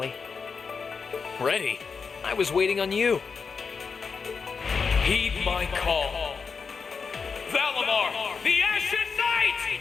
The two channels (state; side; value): quieter; right; 5.4 dB